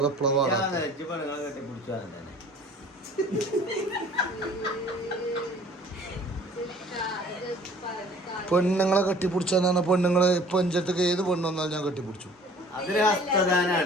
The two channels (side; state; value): both; normal; correlation 0.50